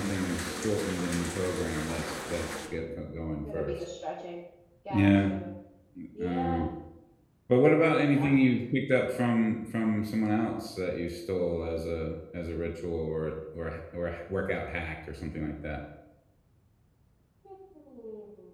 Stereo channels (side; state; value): both; identical; correlation 1.00